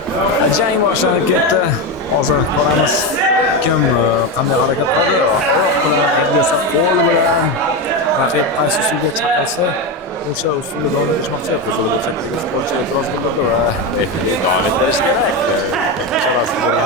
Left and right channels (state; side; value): normal; both; correlation 0.14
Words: Jang boshlanib ketdi. Hozir ko'ramiz kim qanday harakat qiladi. Oyoq bilan, endi esa qo'l bilan raqib qaysi usulga chaqirsa o'sha usulda davom ettirishmoqchi. Qizil burchakdagi sportchi e'tiroz bildirdi va referi davom ettirish kerak. Ishorasini